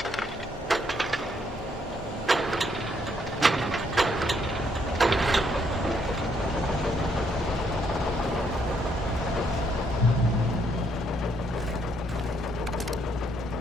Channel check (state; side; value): normal; both; correlation 0.72